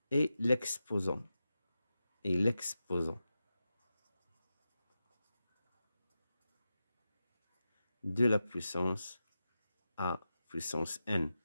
est l'exposant. Et l'exposant de la puissance A puissance n.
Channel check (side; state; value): both; inverted; correlation -0.91